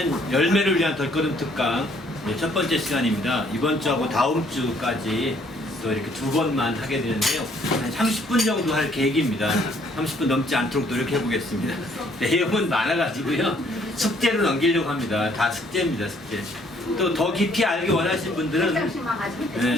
열매를 위한 덧걸음 특강 첫 번째 시간입니다. 이번 주하고 다음 주까지 또 이렇게 두 번만 하게 되는데요. 한 30분 정도 할 계획입니다. 30분 넘지 않도록 노력해 보겠습니다. 내용은 많아가지고요. 숙제로 넘기려고 합니다. 다 숙제입니다, 숙제. 또 더 깊이 알기 원하시는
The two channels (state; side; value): normal; both; correlation 0.64